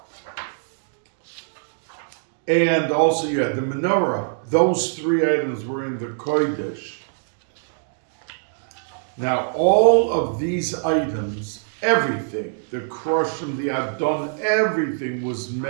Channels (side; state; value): left; silent; digital silence